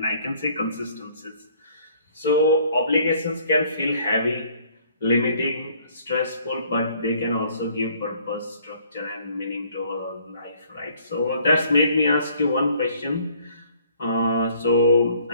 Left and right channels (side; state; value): both; inverted; correlation -0.60